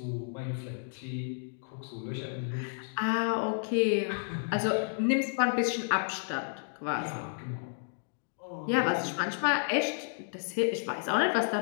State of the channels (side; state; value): right; silent; digital silence